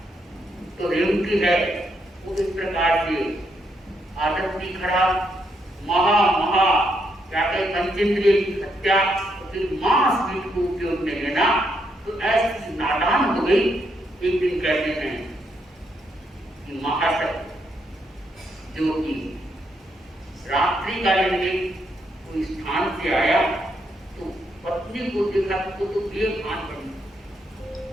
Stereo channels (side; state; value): both; normal; correlation 0.77